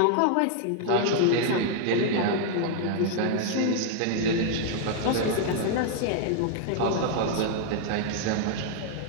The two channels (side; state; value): both; different; correlation -0.01